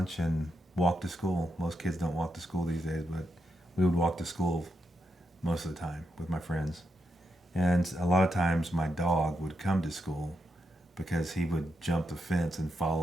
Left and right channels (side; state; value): both; normal; correlation 0.83